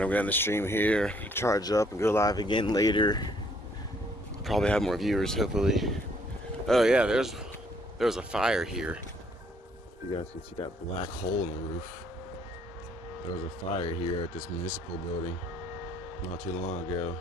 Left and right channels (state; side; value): normal; both; correlation 0.65